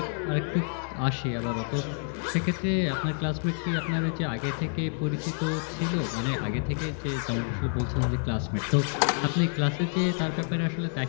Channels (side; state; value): right; silent; 56 dB below the other